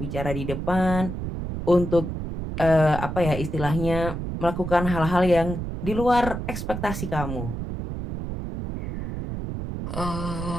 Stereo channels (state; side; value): noise; right; rumble, 5 dB below the sound